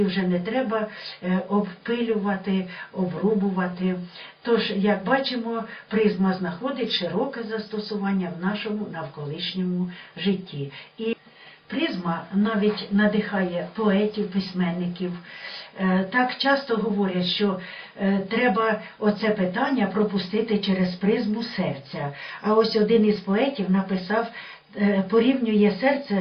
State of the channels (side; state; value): both; identical; correlation 1.00